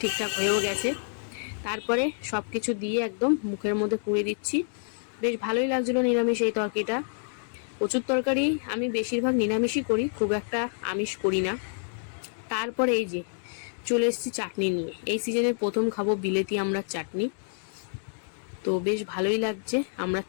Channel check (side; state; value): right; silent; digital silence